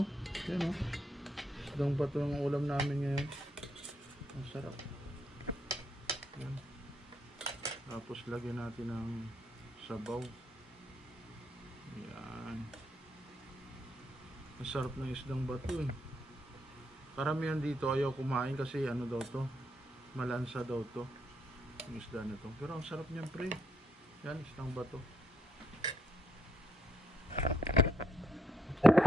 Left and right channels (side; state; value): both; normal; correlation 0.75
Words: Yan, isdang bato ang ulam namin ngayon. Ang sarap. Yan. Tapos lagyan natin ng sabaw. Yan. Ang sarap ng isdang bato eh. Karamihan dito ayaw kumain kasi daw to, malansa daw to yung isda na to. Pero ang sarap niyan pre. Yan, isdang bato.